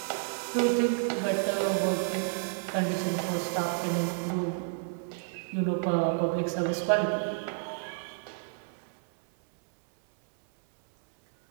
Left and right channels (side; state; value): left; silent; 58 dB below the other